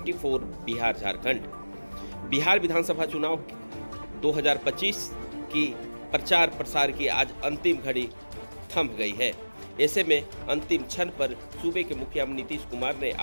बिहार झारखंड। बिहार विधानसभा चुनाव 2025 की प्रचार प्रसार की आज अंतिम घड़ी थम गई है। ऐसे में अंतिम क्षण पर सूबे के मुखिया नीतीश कुमार ने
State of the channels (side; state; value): both; inverted; correlation -1.00